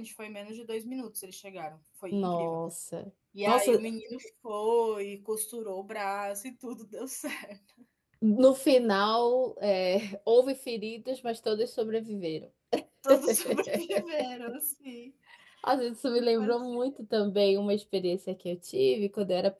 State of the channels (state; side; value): identical; both; correlation 1.00